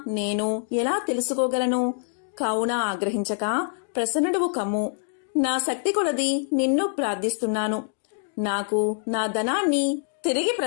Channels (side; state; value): right; silent; digital silence